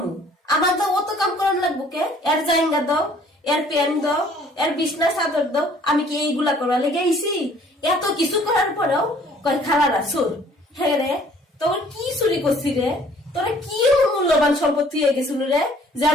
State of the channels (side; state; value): both; normal; correlation 0.57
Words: আমার তো অত কাম করানো লাগবো কে? এর জাইঙ্গা দাও, এর প্যান দাও, এর বিছনা চাদর দাও। আমি কি এইগুলা করা লেগে আইছি? এত কিছু করার পরেও কয় খালারা চোর। হ্যাঁ রে, তোর কি চুরি করছি রে? তোরা কি মূল্যবান সম্পত্তি হয়ে গেছিল রে যে